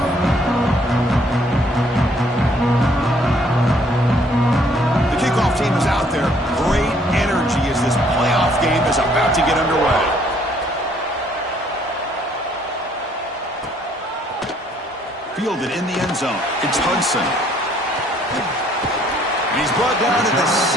Fielded in the end zone. It's Hudson. And he's brought down to the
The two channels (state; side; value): normal; both; correlation 0.63